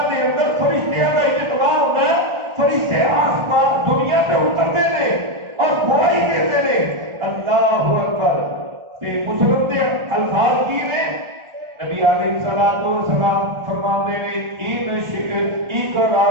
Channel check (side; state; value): left; late; 1.4 ms